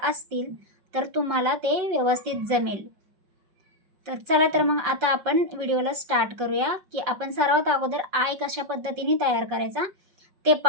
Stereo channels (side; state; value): left; late; 5.4 ms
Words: असतील तर तुम्हाला ते व्यवस्थित जमेल. तर चला, तर मग आता आपण व्हिडिओला स्टार्ट करूया की आपण सर्वात अगोदर आय कशा पद्धतीने तयार करायचा ते